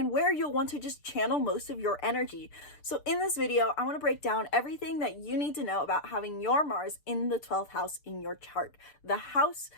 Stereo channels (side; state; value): right; late; 6.8 ms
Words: where you'll want to just channel most of your energy. So in this video, I want to break down everything that you need to know about having your Mars in the 12th house in your chart, the house